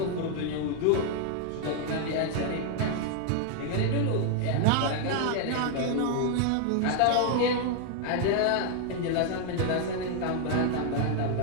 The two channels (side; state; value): both; different; correlation 0.00